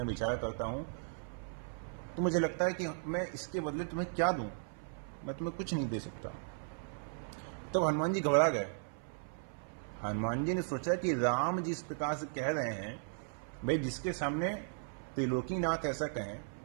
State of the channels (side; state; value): left; silent; 53 dB below the other